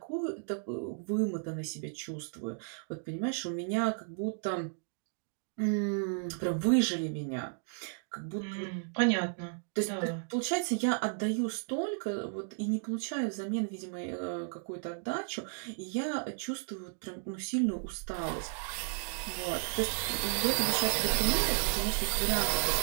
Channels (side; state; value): left; silent; digital silence